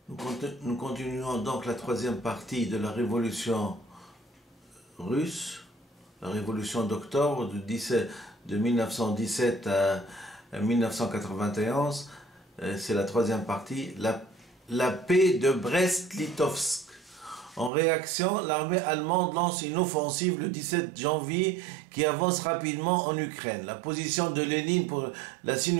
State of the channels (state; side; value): drops out; left; at 17.7 s